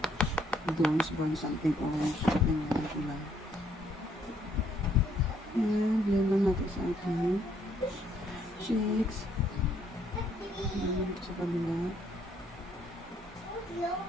bronze burn something orange. Ayan, yung kulay. And blend lang natin sa ating cheeks. Ayan, dito sa kabila.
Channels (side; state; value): both; normal; correlation 0.68